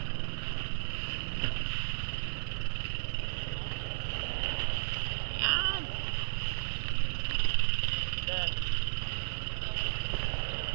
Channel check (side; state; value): left; silent; 55 dB below the other